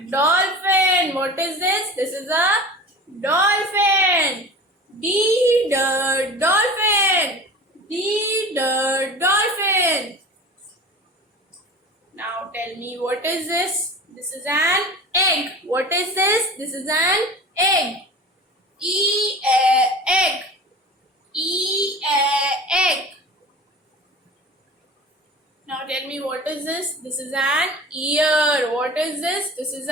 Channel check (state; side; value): normal; both; correlation 0.37